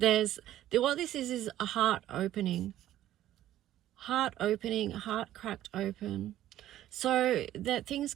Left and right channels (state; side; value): quieter; left; 13.1 dB